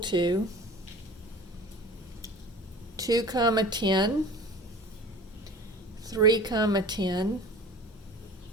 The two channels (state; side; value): normal; both; correlation 0.40